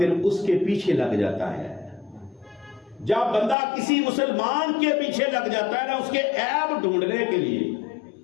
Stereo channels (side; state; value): right; drops out; at 3.6 s